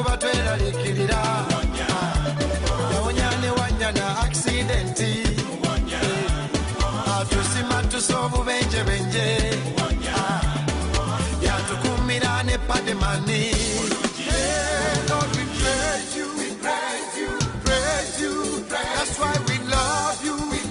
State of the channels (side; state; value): both; identical; correlation 1.00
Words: tweralikirira yawonya ne wanya na aksidenti atusima tusa obubenjebenje yatukumira ne pademani Lord, we praise you, we praise you, praise you. That's why we love you, we